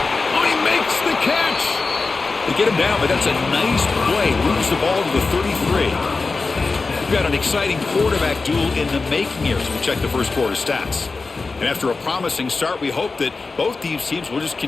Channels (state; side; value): quieter; right; 4.0 dB